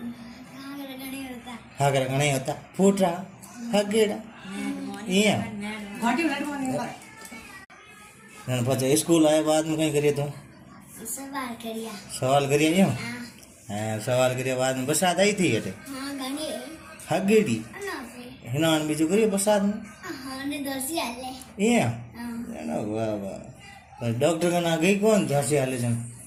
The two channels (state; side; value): identical; both; correlation 1.00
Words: हागर घणी होता हागर गणे होता फूटरा हगेड़ा ये नन पछे स्कूल आए बाद में कई करियो तू सवाल करिया सवाल करियो यो हाँ हाँ सवाल करियो बाद में बरसात आई थी अटे हाँ घणी हगेड़ी ना पे हिनान बीजू करियो बरसात में हाँ ने दोसी आले ये हाँ ना वाह वाह पर डॉक्टर का ना गई कौन झांसी हाले जन